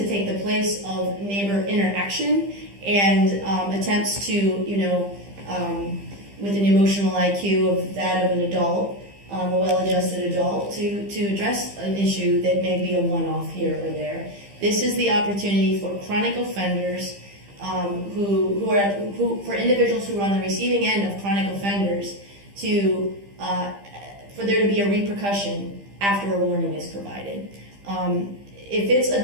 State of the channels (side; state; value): left; late; 15 ms